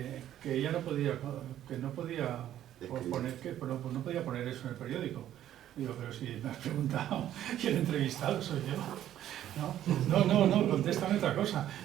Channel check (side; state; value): left; quieter; 11.8 dB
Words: ella no podía no podía poner eso en el periódico. Digo, pero si me has preguntado y el entrevistado soy yo. No, contéstame otra cosa.